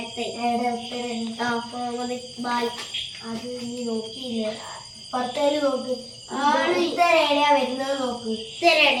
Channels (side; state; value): both; identical; correlation 1.00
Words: മുഹമ്മദ് ഇക്ബാൽ. അത് നീ നോക്കിയില്ല. പത്തേല് നോക്ക്. ഉത്തരേടിയാ വരുന്നത് നോക്ക്.